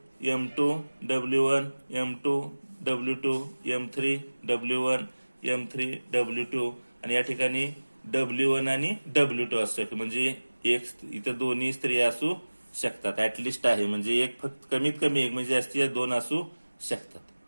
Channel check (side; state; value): both; inverted; correlation -1.00